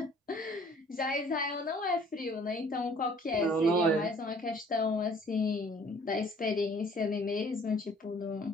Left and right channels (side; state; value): both; normal; correlation 0.55